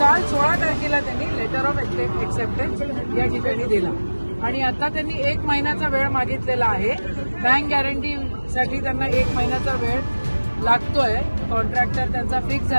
16 तारखेला त्यांनी लेटर ऑफ एक्सेप्टन्स या ठिकाणी दिला आणि आता त्यांनी 1 महिन्याचा वेळ मागितलेला आहे। बँक गॅरंटीसाठी त्यांना 1 महिन्याचा वेळ लागतोय। कॉन्ट्रॅक्टर त्यांचा फिक्स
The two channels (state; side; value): inverted; both; correlation -1.00